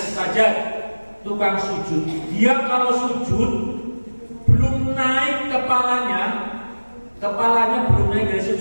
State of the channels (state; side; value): inverted; both; correlation -1.00